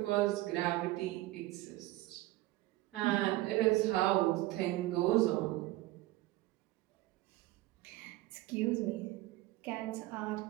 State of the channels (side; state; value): left; quieter; 17.8 dB